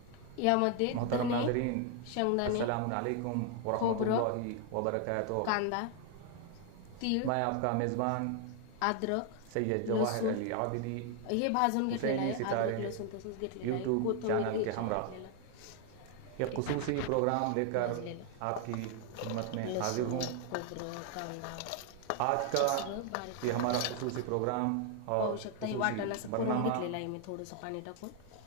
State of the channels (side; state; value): both; different; correlation 0.00